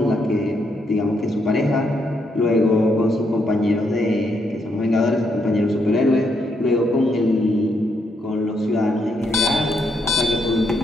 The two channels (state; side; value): normal; both; correlation 0.77